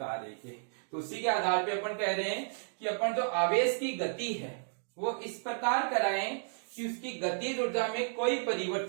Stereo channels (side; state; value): left; silent; digital silence